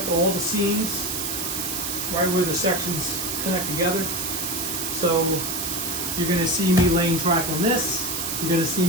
all the seams right where the sections connect together. So you're going to see me laying track on this. You're going to see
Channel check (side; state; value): right; noise; hiss, 2 dB below the sound